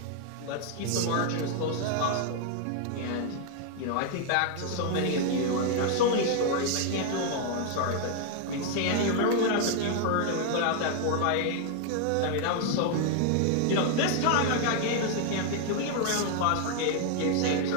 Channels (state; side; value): different; both; correlation 0.00